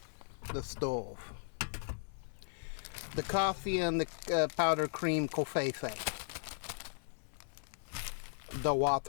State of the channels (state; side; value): silent; right; 53 dB below the other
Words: The stove. The coffee and the powdered cream covfefe. The